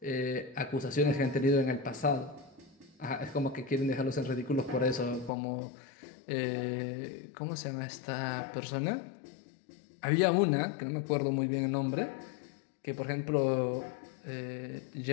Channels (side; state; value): right; drops out; at 5.3 s